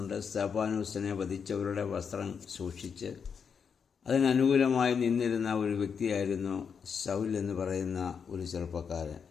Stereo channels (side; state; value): right; quieter; 6.5 dB